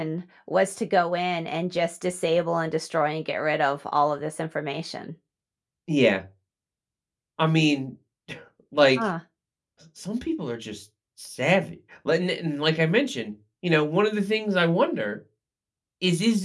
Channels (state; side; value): identical; both; correlation 1.00